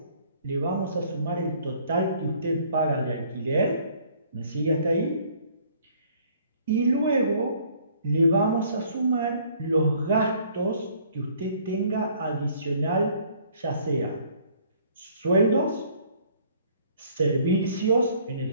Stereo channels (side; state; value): both; inverted; correlation -0.59